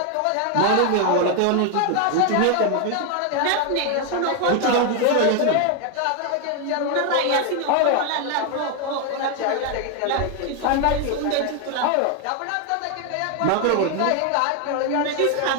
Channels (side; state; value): both; different; correlation 0.01